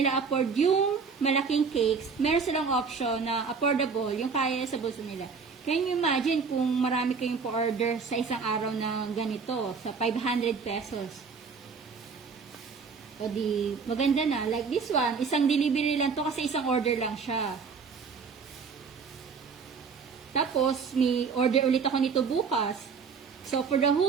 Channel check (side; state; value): left; quieter; 5.4 dB